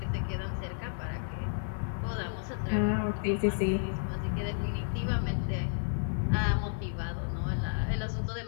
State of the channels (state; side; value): silent; right; 56 dB below the other